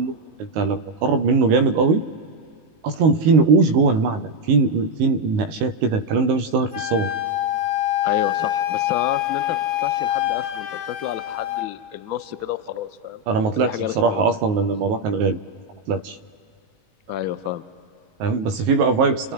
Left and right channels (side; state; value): left; late; 19 ms